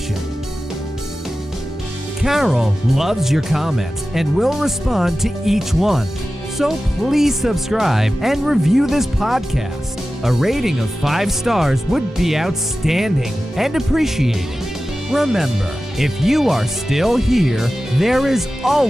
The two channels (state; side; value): normal; both; correlation 0.95